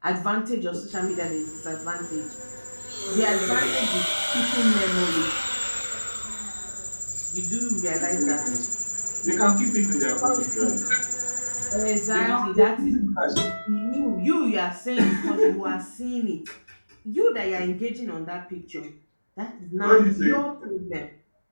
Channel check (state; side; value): inverted; both; correlation -1.00